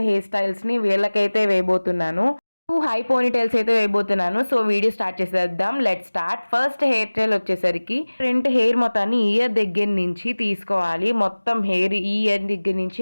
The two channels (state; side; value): inverted; both; correlation -1.00